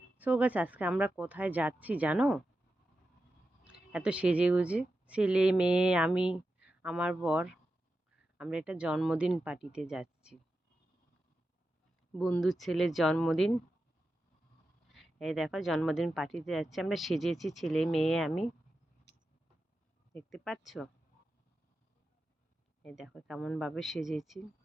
So guys, আজকে আমরা কোথায় যাচ্ছি জানো? এত সেজে গুজে ছেলে মেয়ে আমি আমার বর আমরা একটা জন্মদিন পার্টিতে যাচ্ছি। বন্ধুর ছেলের জন্মদিন। এই দেখো, জন্মদিন পার্টিতে যাচ্ছি আমরা, সেজেছি ছেলে মেয়ে আমি, দেখতে পাচ্ছ? এই দেখো কেমন ভাবে সেজেছি।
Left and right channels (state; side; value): normal; both; correlation 0.90